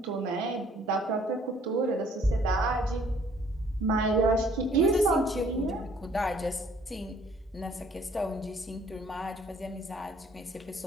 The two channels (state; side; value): normal; both; correlation 0.60